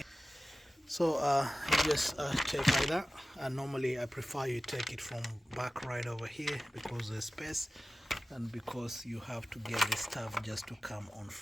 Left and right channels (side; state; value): both; normal; correlation 0.95